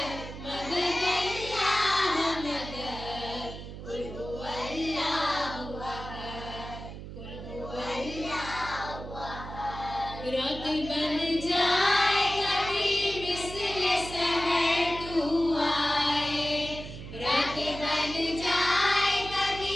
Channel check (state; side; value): noise; right; hum, 11 dB below the sound